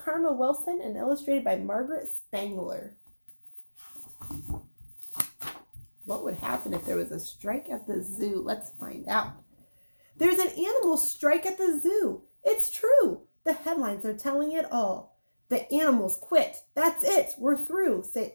Wilson and illustrated by Margaret Spangler. What would happen if there was a strike at the zoo? Let's find out. There's an animal strike at the zoo. It's true. The headlines are telling it all. The animals quit. That's it. We're through, say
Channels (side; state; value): both; inverted; correlation -1.00